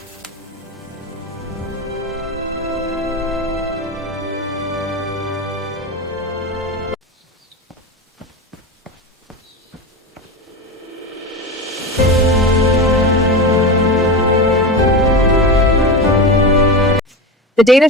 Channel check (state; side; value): normal; both; correlation 0.22